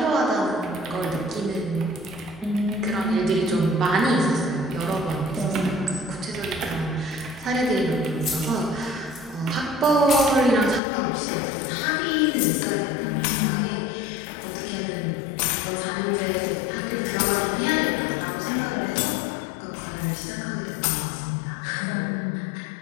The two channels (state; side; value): drops out; right; at 10.8 s